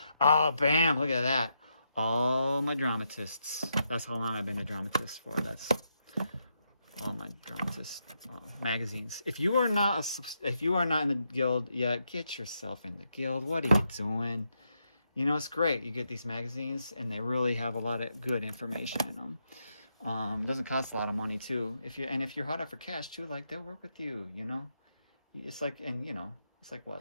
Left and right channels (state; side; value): inverted; both; correlation -0.81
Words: Oh, bam. Look at that. All my dramatists. That's how long I've been a dramatist for. That's all my dramatist magazines. If you are not in the guild yet, get yourself in the guild. What are you doing? You know, it's great. You get these magazines, and they really have a lot of good information in them. It doesn't cost a lot of money too. If you're hot up for cash too, like they'll work with you. You know, it's like, and you know, it's like